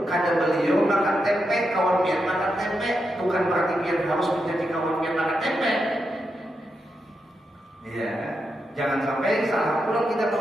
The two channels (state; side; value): normal; both; correlation 0.85